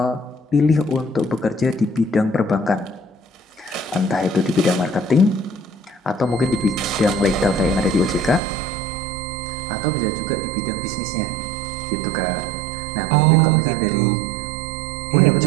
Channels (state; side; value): drops out; left; at 8.4 s